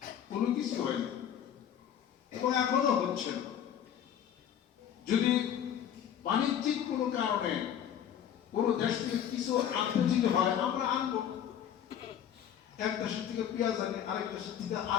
কোনো কিছু হয় না এবং এখনো হচ্ছে না। যদি বাণিজ্যিক কোনো কারণে কোনো দেশ থেকে কিছু আনতে যদি হয়, আমরা আনবো। এক দেশের থেকে পেঁয়াজ আনি, আরেক দেশের থেকে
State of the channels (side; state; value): right; quieter; 9.5 dB